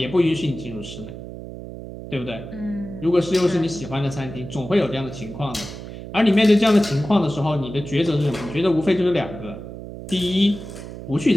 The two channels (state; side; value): noise; right; hum, 11 dB below the sound